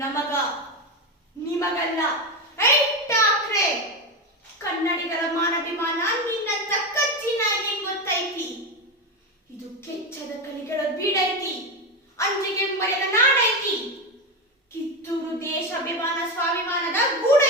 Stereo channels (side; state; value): both; normal; correlation 0.15